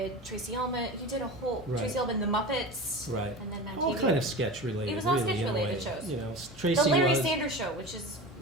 Tracy Ullman. You did a whole Right. Tracy Ullman, the Muppets, Right. and then MADtv. All kind of sketch related. It was all really, sketch in a related way. shows. You know, Tracy The Larry was Sanders Show, which is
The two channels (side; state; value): both; normal; correlation 0.30